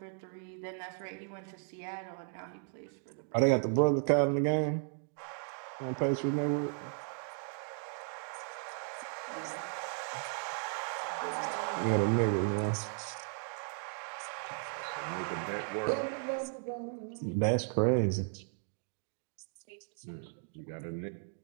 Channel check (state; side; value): silent; left; 54 dB below the other